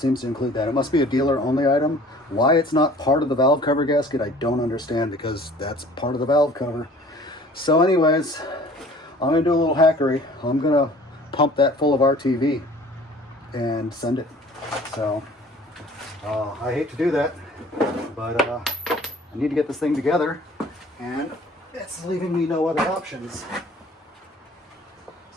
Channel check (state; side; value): normal; both; correlation 0.49